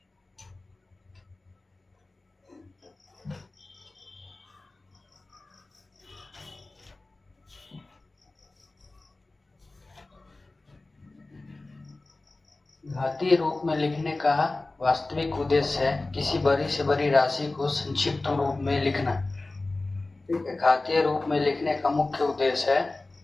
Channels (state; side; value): quieter; right; 3.1 dB